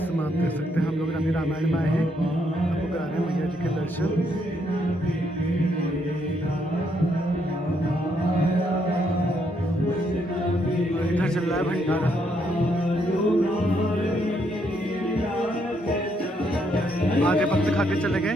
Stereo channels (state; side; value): normal; both; correlation 0.74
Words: समय आप देख सकते हैं हम लोग अभी रामायण में आए हैं, आपको करा रहे हैं मैया जी के दर्शन। और इधर चल रहा है भंडारा। आधे भक्त खा के चले गए।